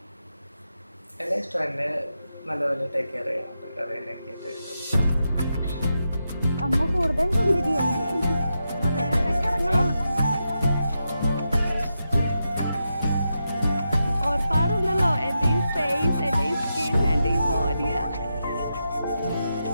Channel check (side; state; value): both; inverted; correlation -0.87